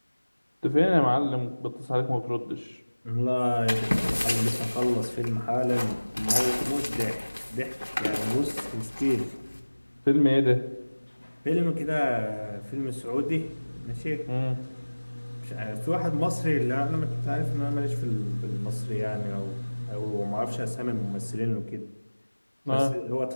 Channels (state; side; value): inverted; both; correlation -1.00